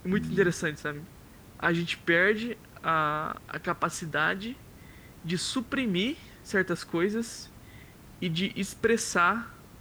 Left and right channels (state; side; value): identical; both; correlation 1.00